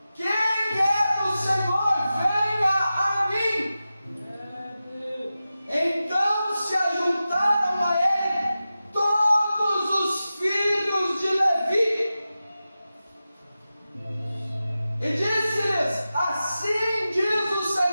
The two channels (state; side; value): inverted; both; correlation -0.93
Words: quem é do Senhor, venha a mim. Então se ajuntaram a ele todos os filhos de Levi, e disse-lhes: assim diz o